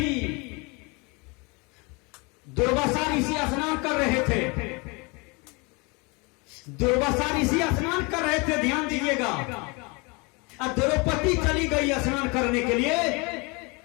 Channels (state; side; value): quieter; right; 28.7 dB